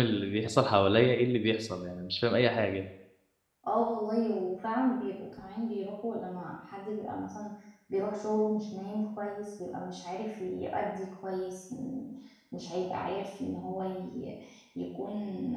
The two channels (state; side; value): identical; both; correlation 1.00